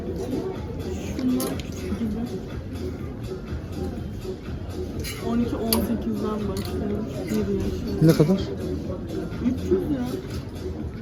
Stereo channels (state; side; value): identical; both; correlation 1.00